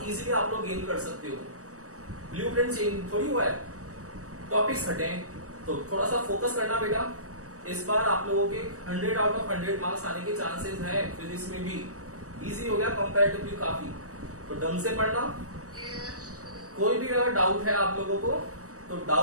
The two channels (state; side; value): late; left; 0.65 ms